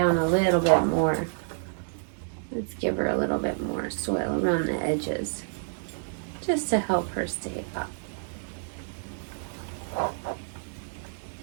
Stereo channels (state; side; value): silent; left; digital silence